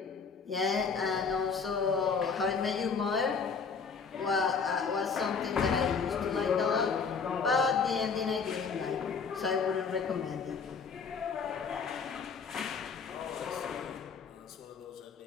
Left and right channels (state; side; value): quieter; right; 5.5 dB